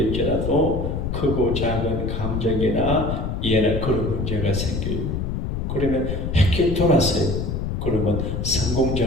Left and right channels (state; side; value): noise; left; rumble, 2 dB below the sound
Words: 크고 작은 감정이나 이해나 그런 문제가 생겨요. 그러면 헷게 돌았어요. 그러면